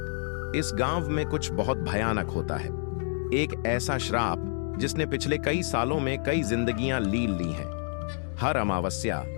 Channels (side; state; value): right; silent; digital silence